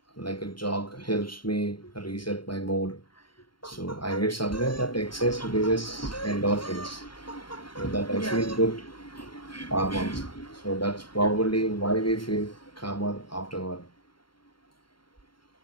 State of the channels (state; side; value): late; right; 0.73 ms